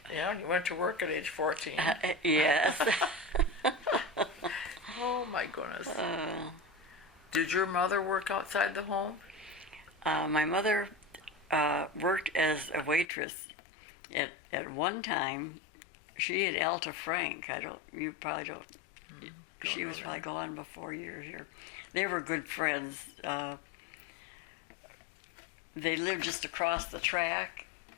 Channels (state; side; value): drops out; right; at 13.1 s